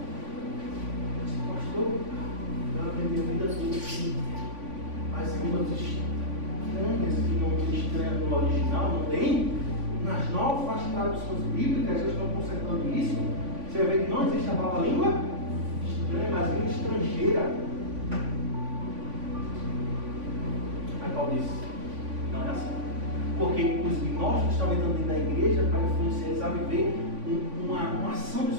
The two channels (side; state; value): left; late; 3.5 ms